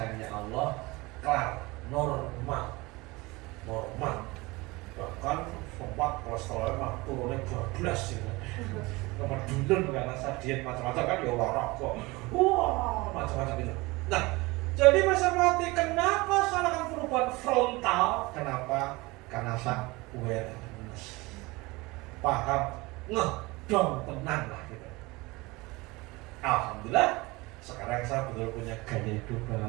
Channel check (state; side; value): quieter; left; 22.9 dB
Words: Allah kelar, normal. Bahkan sempat kolesterolnya mah turunnya 12 gitu. Kemudian karena saya diet macam-macam kan ya olahraga. Wah, macam-macam itu. Nah, jadi masa mati kenapa salahkan perubahan frontal? Kenapa? Karena saya awareness. Paham, ngedong tenang lah gitu. Alhamdulillah, sekarang saya betul punya gaya hidup